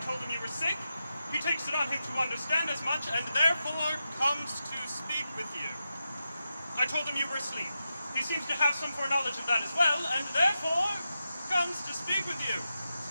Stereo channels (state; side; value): inverted; both; correlation -0.89